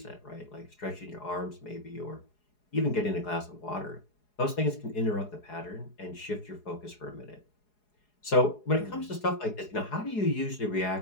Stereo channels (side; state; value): right; late; 4.8 ms